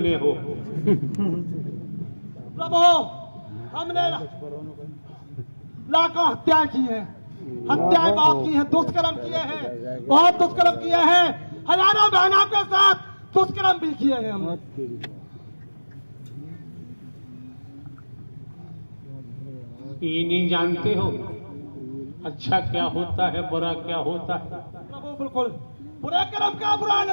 हो? प्रभु, हमने लाखों हत्या की है, हत्याएं बहुत की है, दुष्कर्म किए हैं, बहुत दुष्कर्म किए हैं, हजारों बहनों के साथ दुष्कर्म भी किए हैं हमने। ये नहीं जानते हो अच्छा क्या होता है, बुरा क्या होता है? प्रभु बिल्कुल, बुरे कर्म का बुरा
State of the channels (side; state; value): both; inverted; correlation -1.00